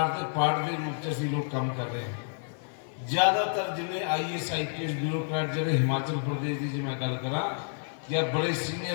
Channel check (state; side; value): silent; right; digital silence